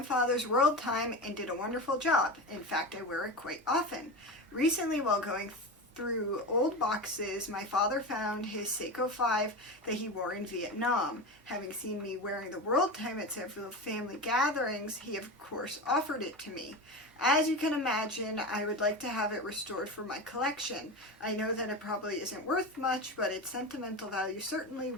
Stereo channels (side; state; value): both; normal; correlation 0.24